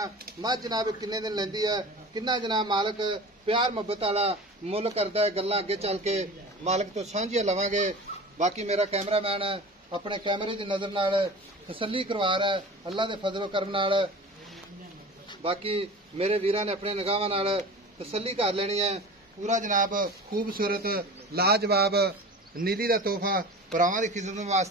मझ जनाब किन्ने दिन लैंदी है, किन्ना जनाब मालक प्यार मुहब्बत वाला मुल करदा है। गल्लां अगे चल के मालक तो सांझियां लवांगे। बाकी मेरा कैमरामैन अपने कैमरे की नजर नाल तसल्ली करवा रहा है अल्लाह के फजलो करम नाल। बाकी मेरे वीरां ने अपने निगाहां नाल तसल्ली कर लेनी है। पूरा जनाब खूबसूरत लाजवाब नीली का तोहफा भरावां की खिदमत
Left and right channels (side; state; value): both; normal; correlation 0.36